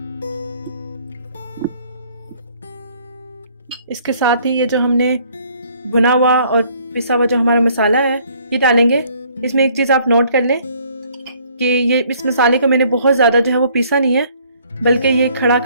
इसके साथ ही ये जो हमने भुना हुआ और पिसा हुआ जो हमारा मसाला है ये डालेंगे। इसमें एक चीज़ आप नोट कर लें कि ये इस मसाले को मैंने बहुत ज़्यादा जो है वो पीसा नहीं है बल्कि ये खड़ा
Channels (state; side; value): inverted; both; correlation -0.61